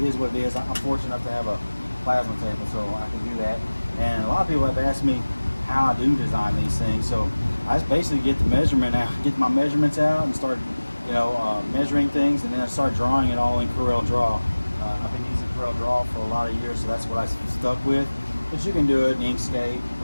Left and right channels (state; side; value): inverted; both; correlation -1.00